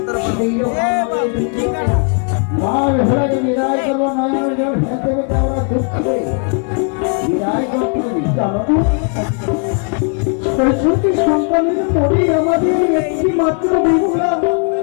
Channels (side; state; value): right; quieter; 38.6 dB